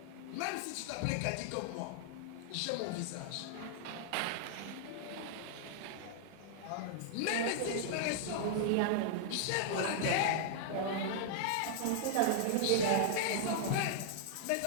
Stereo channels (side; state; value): both; different; correlation -0.01